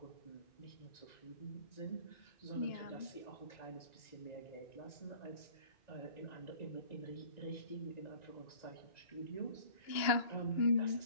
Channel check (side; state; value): right; late; 2.8 ms